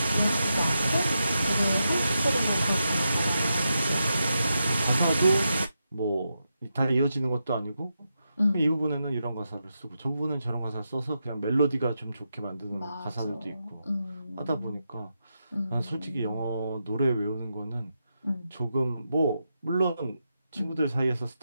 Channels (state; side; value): inverted; both; correlation -0.86